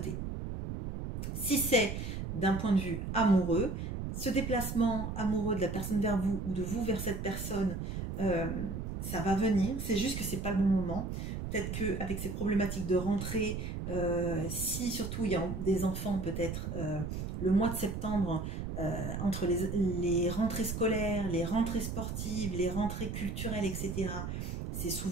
Si c'est d'un point de vue amoureux, ce déplacement amoureux de la personne vers vous ou de vous vers cette personne, ça va venir. C'est juste que ce n'est pas le bon moment. peut-être qu'avec ces problématiques de rentrée, si surtout il y a des enfants, peut-être le mois de septembre, entre les rentrées scolaires, les rentrées sportives, les rentrées culturelles, etc., c'est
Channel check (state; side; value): noise; right; rumble, 5 dB below the sound